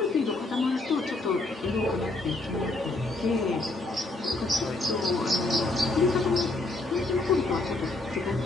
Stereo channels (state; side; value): quieter; right; 3.0 dB